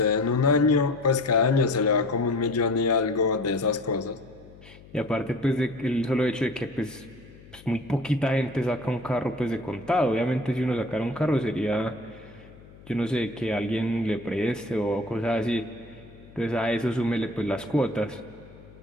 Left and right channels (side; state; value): left; noise; hum, 21 dB below the sound